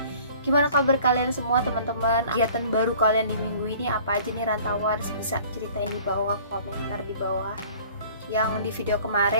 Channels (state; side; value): inverted; both; correlation -0.50